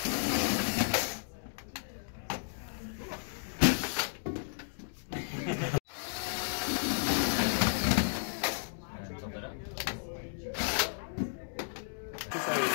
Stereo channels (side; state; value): right; silent; digital silence